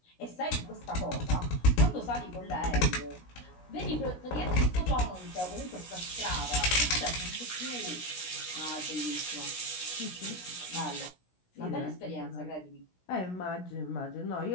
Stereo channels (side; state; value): right; late; 16 ms